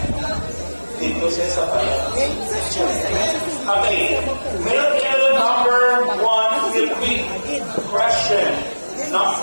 Dito siya sa pala. Okay. Male candidate number 1 will be question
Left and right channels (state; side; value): inverted; both; correlation -1.00